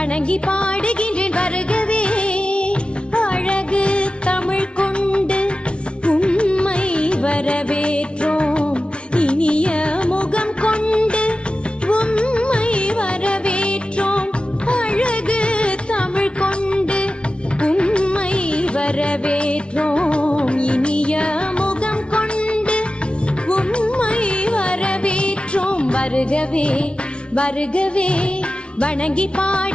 பாடுகின்றேன் வருகவே. அழகு தமிழ் கொண்டு உம்மை வரவேற்றோம், இனிய முகம் கொண்டு உம்மை வரவேற்றோம். அழகு தமிழ் கொண்டு உம்மை வரவேற்றோம், இனிய முகம் கொண்டு உம்மை வரவேற்றோம். வருகவே வருகவே வணங்கி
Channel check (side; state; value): right; late; 0.058 ms